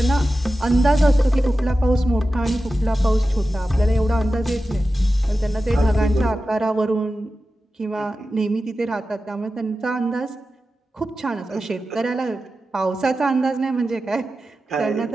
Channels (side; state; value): both; normal; correlation 0.93